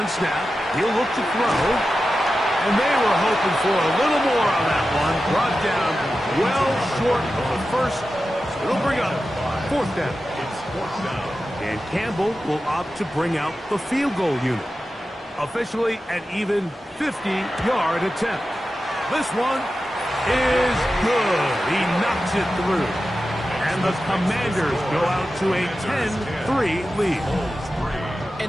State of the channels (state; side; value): normal; both; correlation 0.92